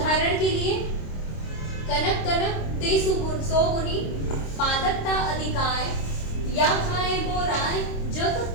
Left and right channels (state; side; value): late; right; 26 ms